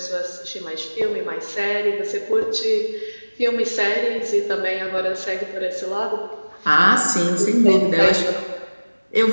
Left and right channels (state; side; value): inverted; both; correlation -1.00